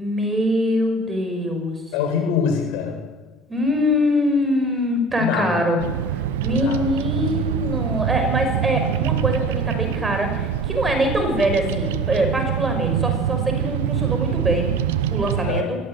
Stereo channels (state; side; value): normal; both; correlation 0.40